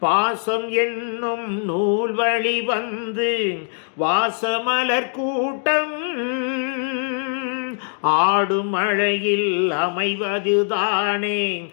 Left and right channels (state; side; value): silent; right; 60 dB below the other